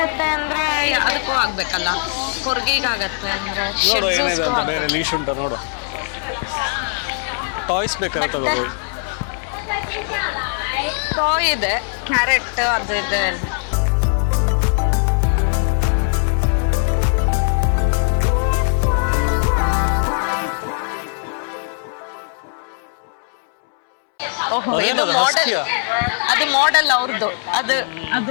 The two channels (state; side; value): silent; right; 66 dB below the other